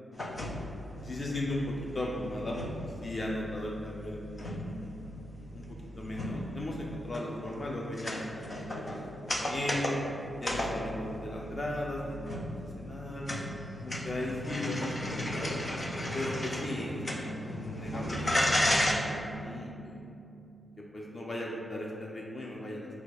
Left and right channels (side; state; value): both; normal; correlation 0.86